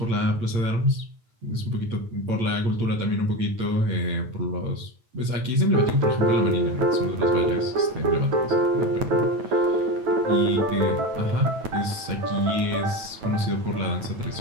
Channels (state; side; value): late; left; 8.8 ms